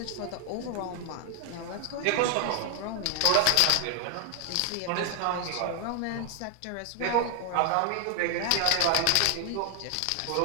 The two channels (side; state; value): both; different; correlation 0.00